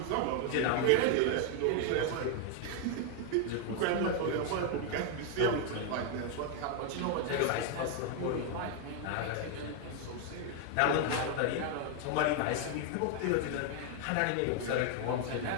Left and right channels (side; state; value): both; different; correlation 0.01